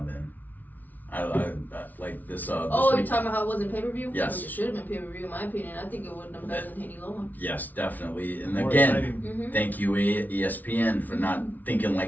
then. I like this. Oh, week. you're talking about how it wasn't pay-per-view? Yes. It should have been pay-per-view, in my opinion. I think it would have been better than Haney Loma. Yes, definitely. And More again, exciting. thank you ESPN for not thinking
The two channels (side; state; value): right; late; 0.080 ms